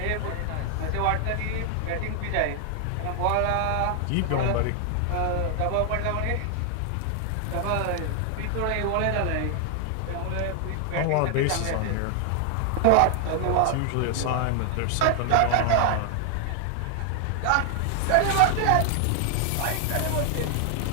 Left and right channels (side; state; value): both; different; correlation 0.00